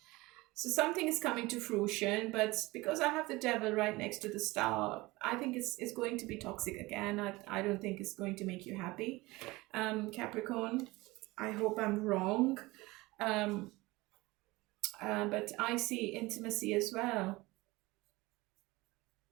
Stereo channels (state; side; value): quieter; left; 21.3 dB